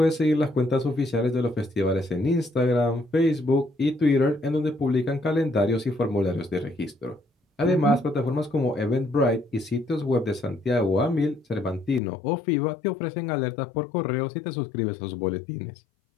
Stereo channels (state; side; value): drops out; right; at 12.0 s